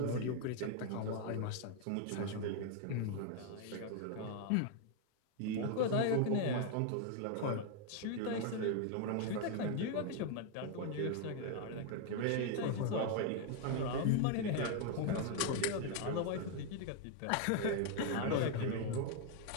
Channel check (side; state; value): both; different; correlation 0.00